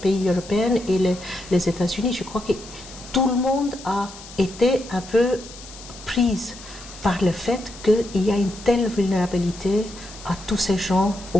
européens et les États-Unis. Je crois que tout le monde a été un peu prise par le fait qu'il y a une telle vulnérabilité à tous ces gens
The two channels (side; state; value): left; noise; hiss, 17 dB below the sound